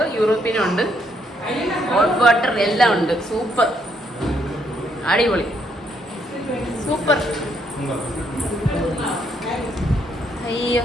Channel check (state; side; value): normal; both; correlation 0.73